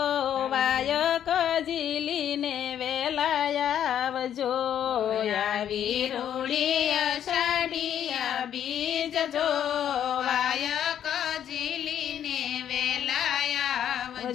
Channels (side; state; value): right; quieter; 9.9 dB